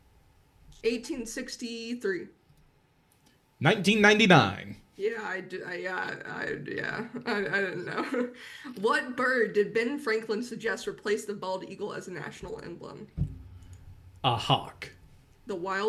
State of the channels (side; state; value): both; identical; correlation 1.00